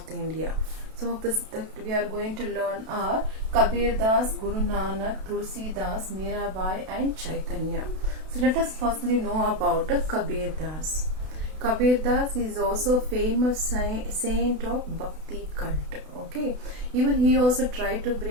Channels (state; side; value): late; left; 32 ms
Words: India. Some of this that we are going to learn are Kabir Das, Guru Nanak, Tulsi Das, Mirabai and Chaitanya. So let us firstly know about Kabir Das. Kabir Das is also famous saint of Bhakti cult. Okay, even he also tried to